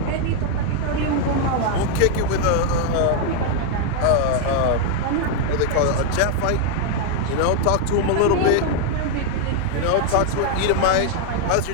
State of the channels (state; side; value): different; both; correlation 0.00